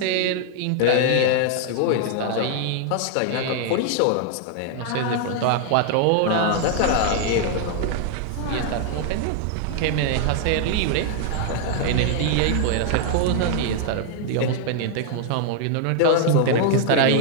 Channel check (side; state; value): both; different; correlation 0.00